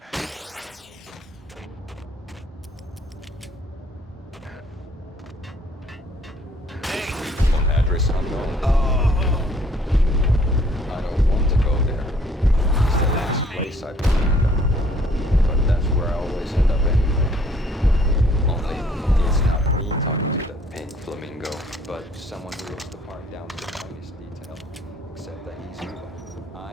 Phone address unknown. I don't want to go there. It's the last place I've been. But that's where I always end up anyway. Only it's not me talking to that pink flamingo, but someone who looks the part down to the finest detail. Except that he's evil.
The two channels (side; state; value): both; normal; correlation 0.60